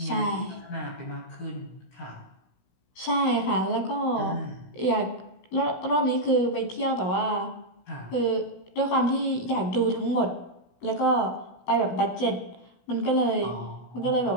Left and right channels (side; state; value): right; late; 16 ms